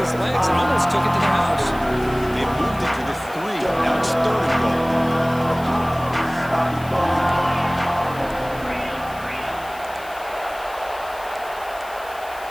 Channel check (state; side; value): noise; left; hiss, 20 dB below the sound